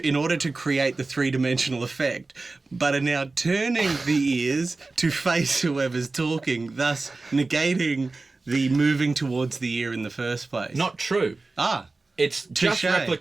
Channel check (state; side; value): quieter; left; 3.5 dB